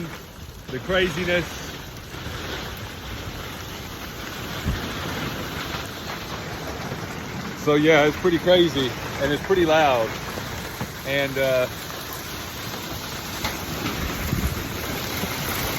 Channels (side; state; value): both; identical; correlation 1.00